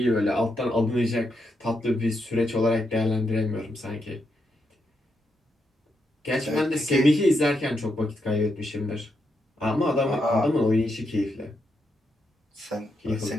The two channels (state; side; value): normal; both; correlation 0.82